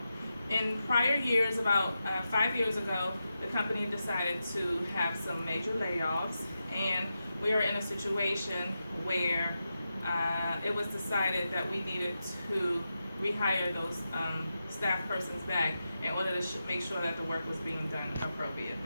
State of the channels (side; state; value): both; inverted; correlation -0.89